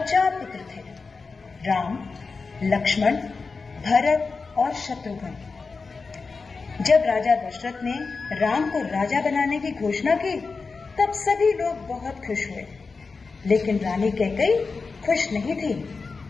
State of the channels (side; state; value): right; quieter; 4.4 dB